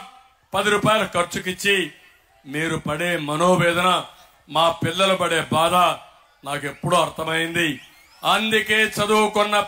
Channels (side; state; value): both; identical; correlation 1.00